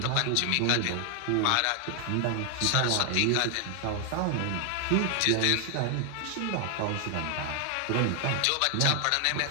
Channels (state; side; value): different; both; correlation 0.00